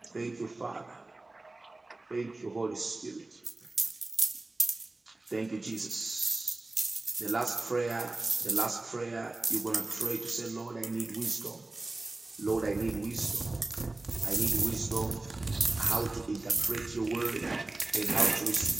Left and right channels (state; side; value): quieter; left; 3.0 dB